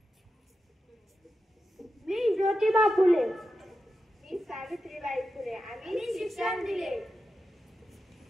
मी ज्योतिबा फुले, मी सावित्रीबाई फुले आम्ही शिक्षण दिले.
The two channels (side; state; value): both; normal; correlation 0.90